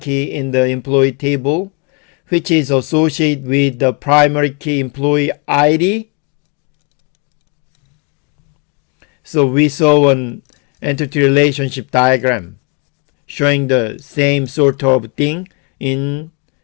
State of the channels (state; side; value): quieter; right; 33.3 dB